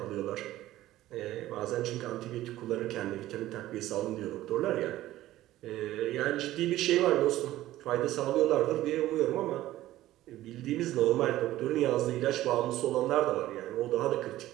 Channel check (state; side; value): quieter; left; 15.0 dB